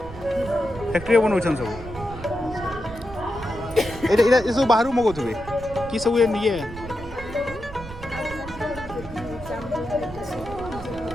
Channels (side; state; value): right; noise; rumble, 13 dB below the sound